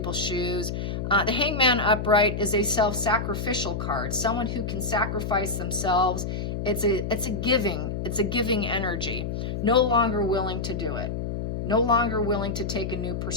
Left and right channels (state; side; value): noise; left; hum, 3 dB below the sound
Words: shoes. The Hangman upright is a self-sacrificial card, someone who can sacrifice themselves. It's a giving energy. No longer willing to do it. No longer willing to take a new